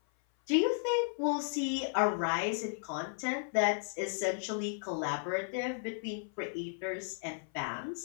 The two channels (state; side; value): silent; right; 55 dB below the other